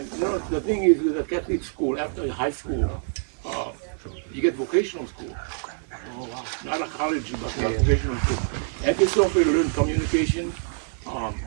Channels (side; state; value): left; silent; digital silence